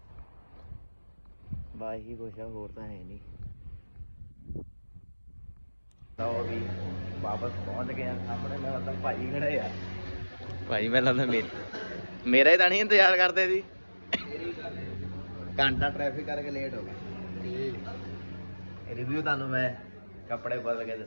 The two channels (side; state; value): both; inverted; correlation -1.00